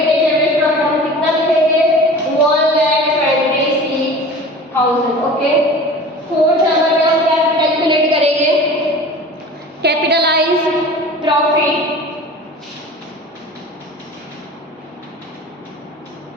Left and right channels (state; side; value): normal; both; correlation 0.39